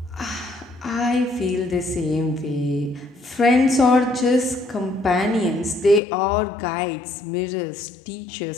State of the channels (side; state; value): right; drops out; at 6.0 s